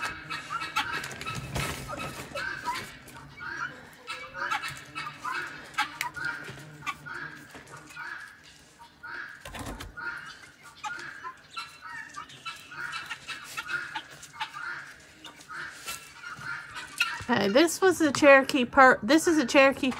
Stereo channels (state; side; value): identical; both; correlation 1.00